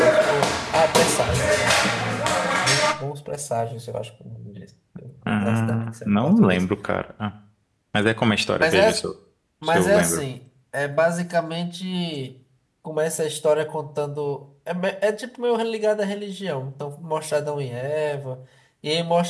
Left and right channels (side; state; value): both; identical; correlation 1.00